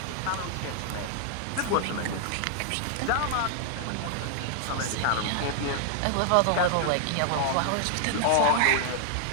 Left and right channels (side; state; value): both; different; correlation 0.00